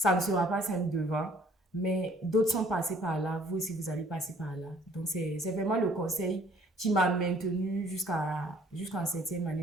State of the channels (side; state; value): both; normal; correlation 0.58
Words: ne sera pas simple devant, mais d'autres sont passés par là. Vous aussi, vous allez passer par là. Donc, c'est vraiment le conseil qui m'a maintenu jusqu'en 7e